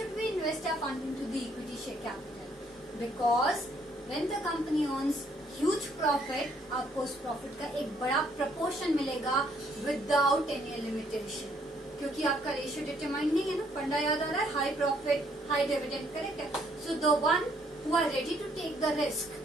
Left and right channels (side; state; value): both; normal; correlation 0.67